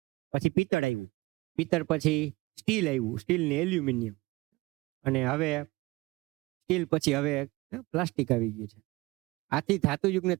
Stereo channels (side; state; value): left; quieter; 21.4 dB